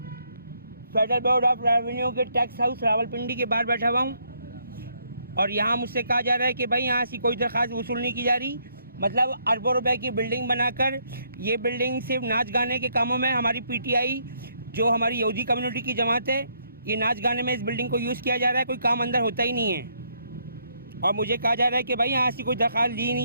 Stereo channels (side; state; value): both; inverted; correlation -0.72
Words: फेडरल बोर्ड ऑफ रेवेन्यू के टैक्स हाउस रावलपिंडी के बाहर बैठा हुआ हूँ और यहाँ मुझसे कहा जा रहा है कि भाई यहाँ से कोई दरख्वास्त वसूल नहीं की जा रही। मतलब अरबों रुपए की बिल्डिंग बनाकर ये बिल्डिंग सिर्फ नाच गाने के कामों में, हमारी पीटीआई जो हमारी यहूदी कम्युनिटी की जमात है, ये नाच गाने में इस बिल्डिंग को यूज़ किया जा रहा है, कोई काम अंदर होता ही नहीं है। और मुझे कहा जा रहा है कि भाई यहाँ से कोई दरख्वास्त ली